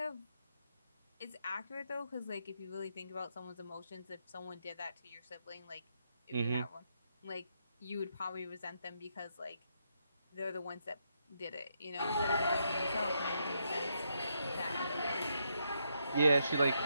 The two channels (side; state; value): both; inverted; correlation -0.78